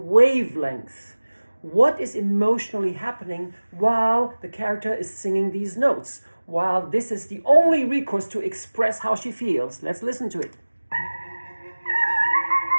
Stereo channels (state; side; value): inverted; both; correlation -1.00